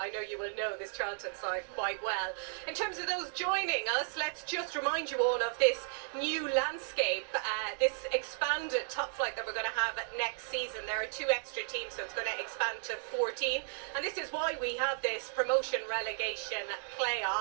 know you will know this Charlton side quite well. In terms of those joining us, let's just remind you all of this new landscape, this expanded top flight that we're going to have next season. There are 2 extra teams, so it's going to expand to 14. And this is why we have this promotion relegation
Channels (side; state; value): left; silent; digital silence